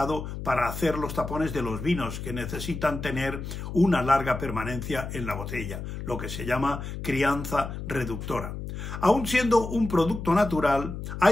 para hacer los tapones de los vinos que necesitan tener una larga permanencia en la botella, lo que se llama crianza reductora. Aun siendo un producto natural,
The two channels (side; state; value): left; noise; hum, 7 dB below the sound